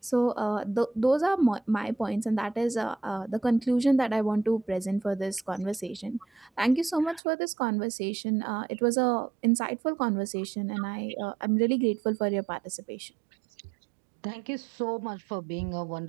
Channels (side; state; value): left; drops out; at 7.2 s